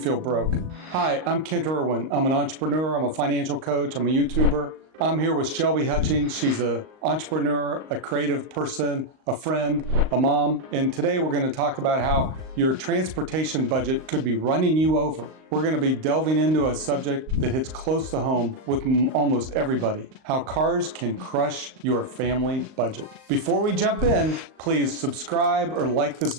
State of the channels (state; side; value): late; left; 38 ms